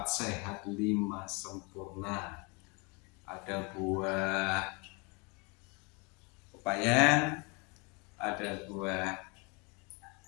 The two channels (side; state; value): right; quieter; 30.2 dB